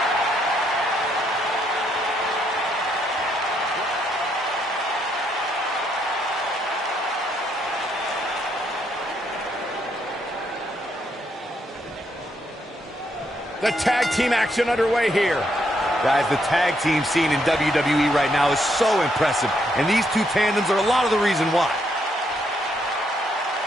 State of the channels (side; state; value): both; normal; correlation 0.75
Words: The tag team action underway here. Guys, the tag team scene in WWE right now is so impressive, and these two tandems are a lot of the reason why.